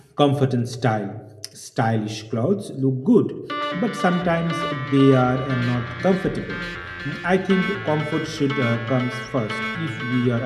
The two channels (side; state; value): both; identical; correlation 1.00